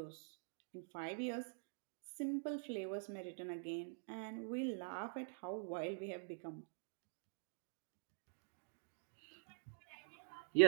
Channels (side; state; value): left; silent; digital silence